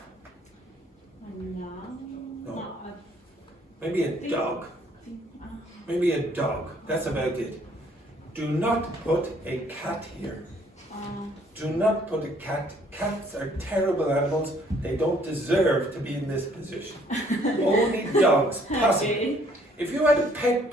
No. Maybe a dog. Maybe a dog. That's about it. Do not put a cat here. Do not put a cat. Cats are terrible animals. They don't deserve to be in this position. Only dogs, possibly. If you had a pet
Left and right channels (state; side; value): normal; both; correlation 0.62